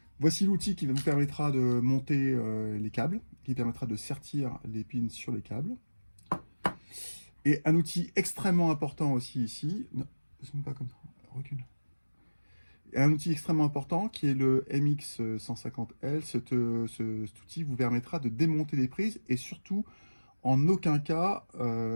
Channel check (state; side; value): inverted; both; correlation -1.00